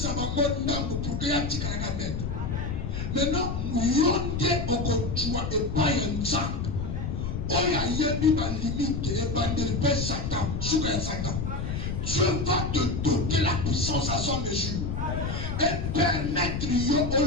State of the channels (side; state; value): left; noise; rumble, 3 dB below the sound